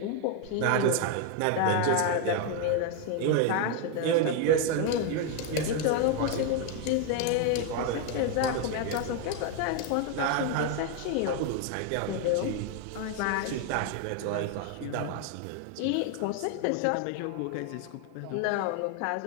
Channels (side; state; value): both; different; correlation 0.01